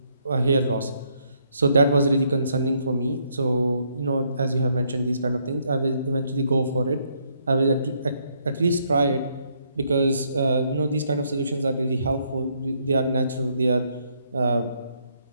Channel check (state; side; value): inverted; both; correlation -0.72